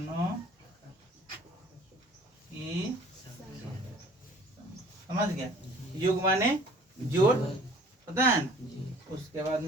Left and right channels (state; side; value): normal; both; correlation 0.51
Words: की समझ गया। योग माने जोड़ पता है ना। उसके बाद